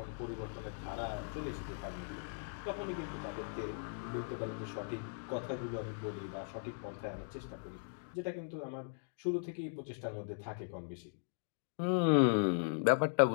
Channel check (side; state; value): right; silent; digital silence